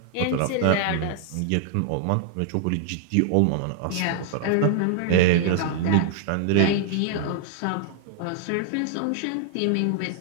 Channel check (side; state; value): both; different; correlation -0.01